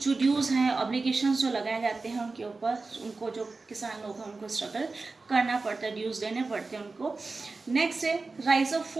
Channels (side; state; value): left; quieter; 3.8 dB